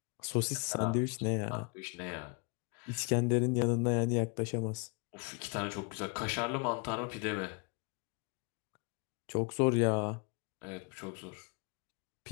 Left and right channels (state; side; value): quieter; right; 33.4 dB